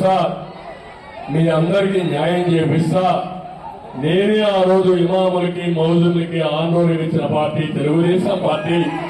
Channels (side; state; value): both; identical; correlation 1.00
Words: మీ అందరికీ న్యాయం చేపిస్తా. నేనే ఆ రోజు ఇమాములకి మౌజులకి ఆందోళన ఇచ్చిన పార్టీ తెలుగుదేశం పార్టీ.